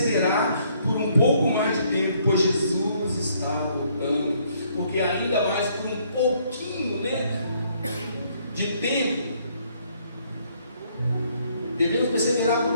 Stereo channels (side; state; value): both; inverted; correlation -0.67